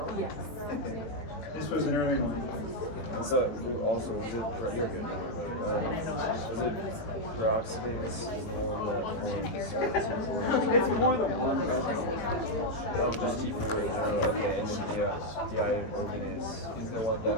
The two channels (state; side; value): late; right; 18 ms